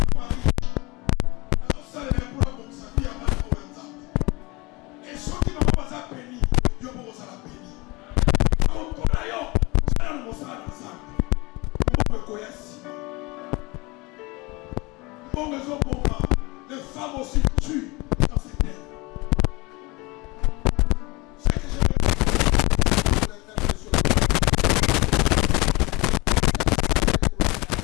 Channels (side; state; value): right; quieter; 24.5 dB